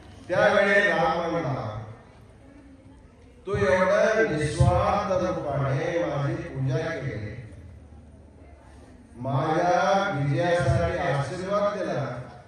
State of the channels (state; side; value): identical; both; correlation 1.00